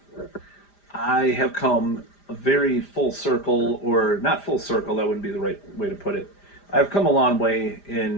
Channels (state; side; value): late; right; 5.0 ms